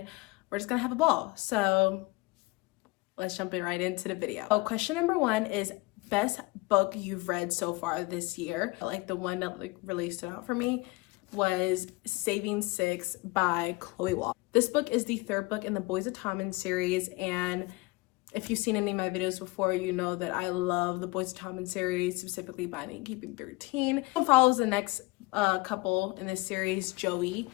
we're just gonna have a ball. So let's jump right into the video. So question number 1 is best book you've read so far this year. Like the one that really stood out for me was Saving Six by Chloe Wall. This book is the 3rd book in the Boys of Tommen series, and if you've seen any of my videos before, you know that I love the Boys of Tommen series, specifically Binding and Keeping 13. It follows the next couple in this series, Joey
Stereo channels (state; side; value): quieter; right; 23.7 dB